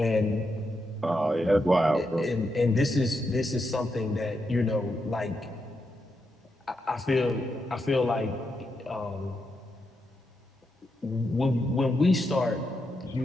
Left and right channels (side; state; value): both; normal; correlation 0.83